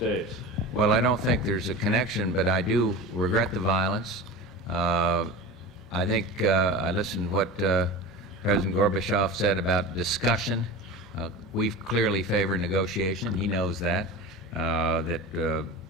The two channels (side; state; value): both; normal; correlation 0.30